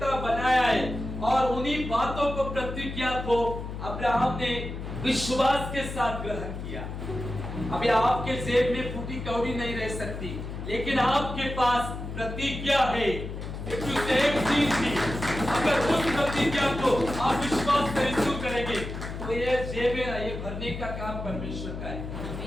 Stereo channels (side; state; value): left; noise; hum, 7 dB below the sound